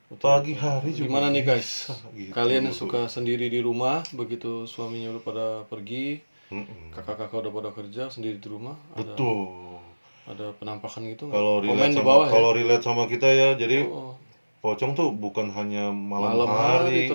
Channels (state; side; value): inverted; both; correlation -1.00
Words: pagi hari juga. Gimana nih guys? Gitu. Kalian suka sendiri di rumah, begitu suaminya udah pada pergi, kakak-kakak udah pada kerja sendiri di rumah. Betul. Ada penampakan gitu nggak? Kalau relate sama kita ya, jadi pocong tuh bukan hanya malam hari